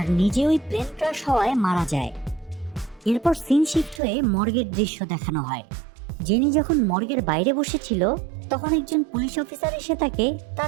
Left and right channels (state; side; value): drops out; left; at 4.0 s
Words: নিজে ওই প্লেন ক্রাশ হওয়ায় মারা যায়। এরপর সিন শিফট হয়ে মর্গের দৃশ্য দেখানো হয়। জেনি যখন মর্গের বাইরে বসেছিল তখন একজন পুলিশ অফিসার এসে তাকে